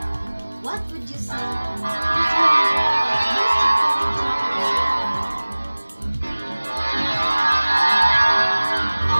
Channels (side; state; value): both; inverted; correlation -1.00